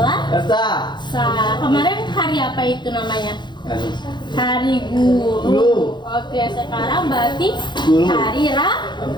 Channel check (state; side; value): late; right; 0.22 ms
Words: Kemarin hari apa itu namanya? Hari Guru. Oke, sekarang berarti hari